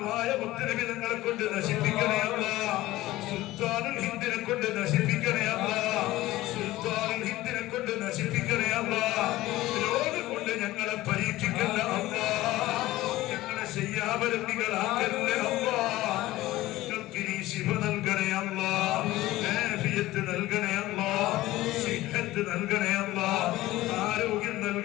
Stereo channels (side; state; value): right; quieter; 17.1 dB